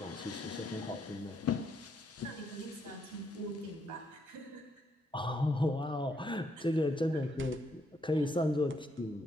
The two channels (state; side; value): normal; both; correlation 0.75